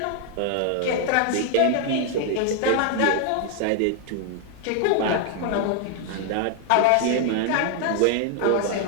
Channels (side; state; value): both; different; correlation 0.00